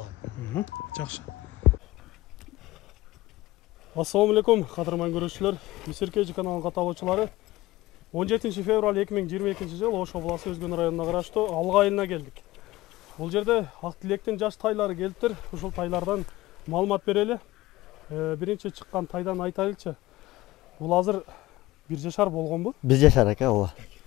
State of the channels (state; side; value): quieter; right; 18.1 dB